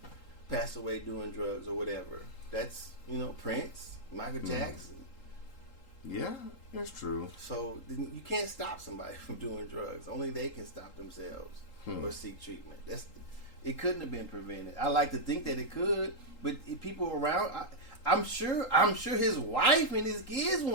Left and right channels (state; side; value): late; right; 3.8 ms